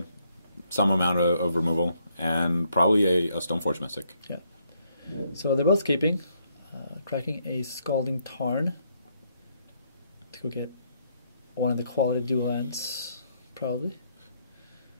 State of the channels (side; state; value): both; inverted; correlation -0.73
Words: some amount of removal, and probably a Stoneforge Mystic. Yeah. So they're both keeping, cracking a Scalding Tarn to go get one of the quality dual lands, probably.